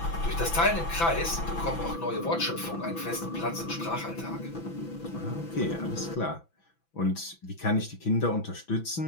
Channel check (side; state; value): right; late; 6.0 ms